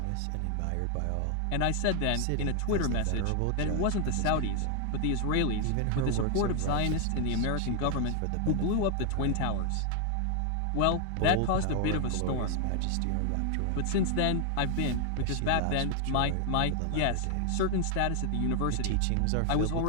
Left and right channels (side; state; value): both; different; correlation 0.00